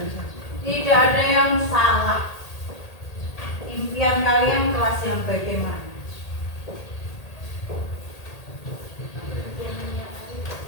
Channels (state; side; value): late; right; 1.8 ms